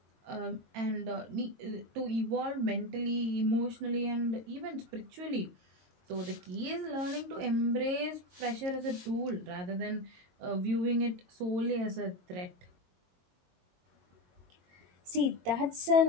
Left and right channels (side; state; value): left; late; 22 ms